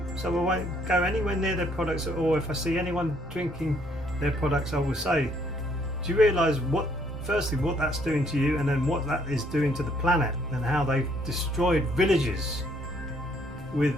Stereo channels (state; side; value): noise; left; rumble, 18 dB below the sound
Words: so I won't go anywhere near their products at all. If I see anyone drinking their products, I will say, do you realise firstly what that's doing to you, and then what that is doing to the planet, and how they've destroyed villages with